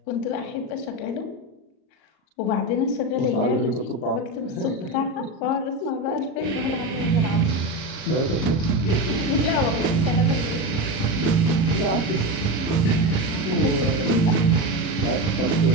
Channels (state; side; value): late; right; 38 ms